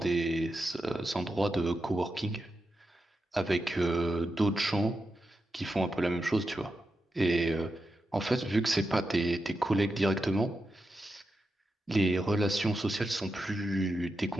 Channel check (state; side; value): normal; both; correlation 0.88